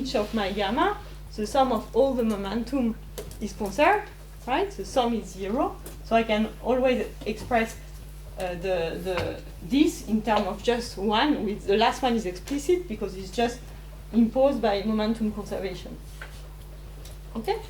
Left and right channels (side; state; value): both; identical; correlation 1.00